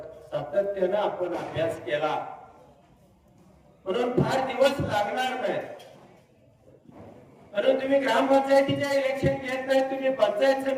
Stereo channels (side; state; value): both; identical; correlation 1.00